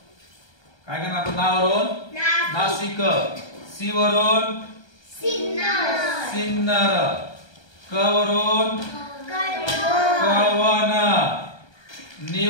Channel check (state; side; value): late; right; 1.2 ms